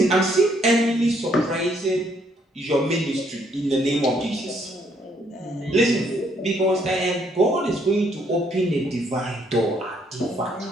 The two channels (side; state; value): both; normal; correlation 0.69